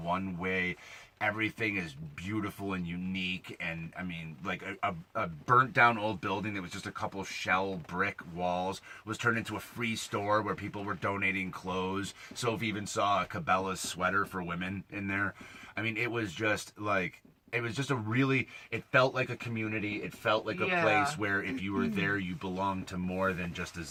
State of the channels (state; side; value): identical; both; correlation 1.00